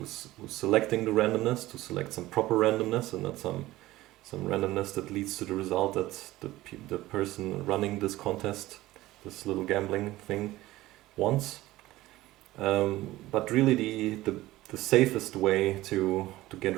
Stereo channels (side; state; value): left; quieter; 17.1 dB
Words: selecting the randomness to select some proper randomness and not some randomness that leads to the result that the person running this contest, this little gambling thing, wants. But really the safest way to